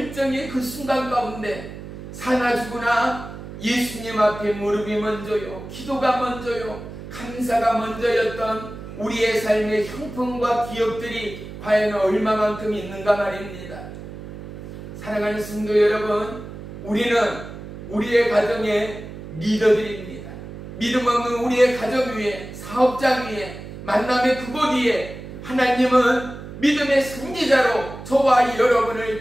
그 순간 가운데 사나 죽으나 예수님 앞에 무릎이 먼저요, 기도가 먼저요, 감사가 먼저였던 우리의 삶의 형편과 기억들이 과연 얼마만큼 있는가 말입니다. 사랑하는 성도 여러분, 우리는 우리의 가정의 리더들입니다. 믿음 없는 우리의 가정 위에, 사업장 위에, 만남의 그곳 위에 하나님은 믿음의 선지자로 저와 여러분을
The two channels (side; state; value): right; noise; hum, 12 dB below the sound